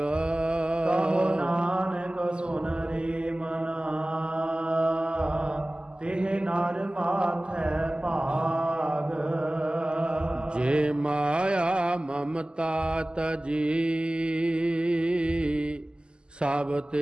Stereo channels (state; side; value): late; left; 0.049 ms